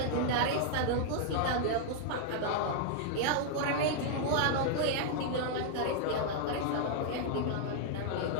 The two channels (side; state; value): both; different; correlation -0.01